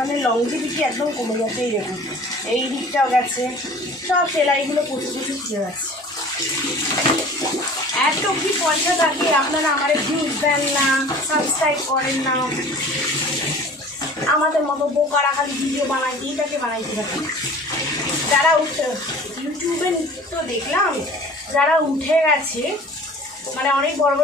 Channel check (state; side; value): normal; both; correlation 0.45